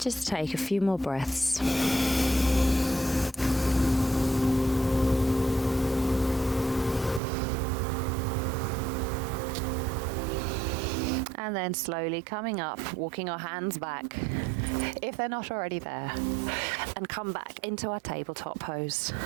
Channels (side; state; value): left; drops out; at 7.2 s